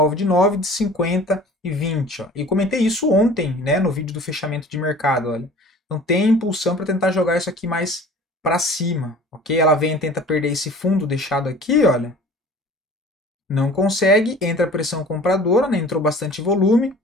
de 9, de 50 e 20, ó. E comentei isso ontem, né, no vídeo do fechamento de mercado, olha. Então tem impulsão para tentar jogar isso aqui mais para cima, ok? Ela vem e tenta perder esse fundo deixado aqui, olha. Não consegue, entra a pressão compradora, né? Entrou bastante volume.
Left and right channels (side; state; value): both; normal; correlation 0.45